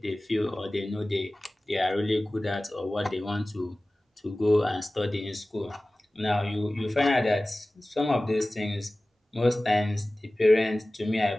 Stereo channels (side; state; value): both; normal; correlation 0.97